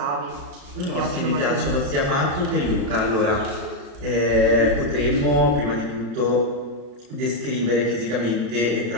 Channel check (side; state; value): left; late; 34 ms